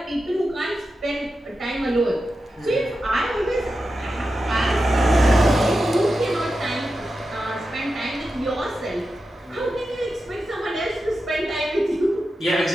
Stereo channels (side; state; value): both; normal; correlation 0.91